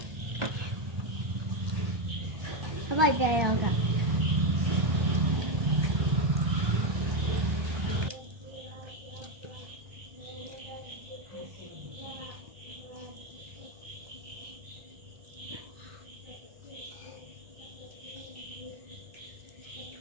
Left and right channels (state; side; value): late; left; 1.2 ms